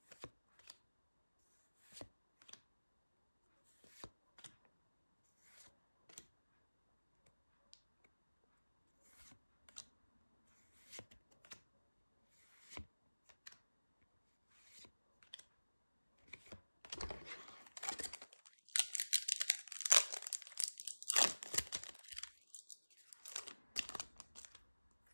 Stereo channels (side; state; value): both; inverted; correlation -1.00